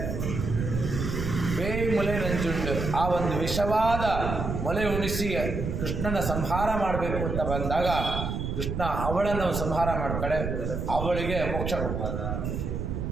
ವೇ ಮೊಲೆ ನಂಜುಂಡು, ಆ ಒಂದು ವಿಷವಾದ ಮೊಲೆ ಉಣಿಸಿ ಕೃಷ್ಣನ ಸಂಹಾರ ಮಾಡಬೇಕು ಅಂತ ಬಂದಾಗ ಕೃಷ್ಣ ಅವಳನ್ನು ಸಂಹಾರ ಮಾಡ್ತಾಳೆ, ಅವಳಿಗೆ ಮೋಕ್ಷ ಕೊಡ್ತಾಳೆ.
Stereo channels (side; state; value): right; noise; rumble, 3 dB below the sound